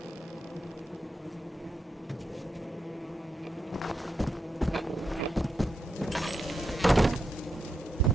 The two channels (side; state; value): both; normal; correlation 0.83